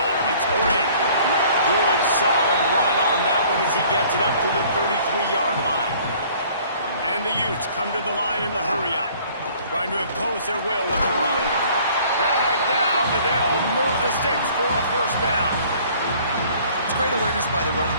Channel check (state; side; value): inverted; both; correlation -0.54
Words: It's great. Good, solid run on that one as he gets it up to the 33-yard line. And the Utes come to the line in the hurry-up, trying to impose their will with the run. Dragged down, but they'll move the sticks for a first down. It's great awareness by the running